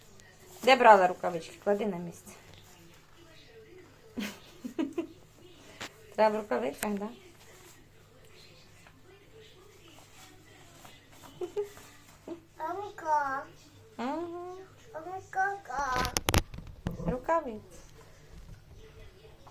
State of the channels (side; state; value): both; identical; correlation 1.00